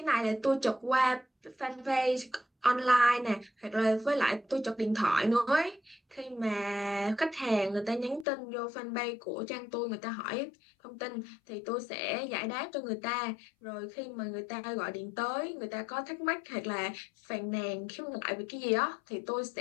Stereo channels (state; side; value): drops out; right; at 8.2 s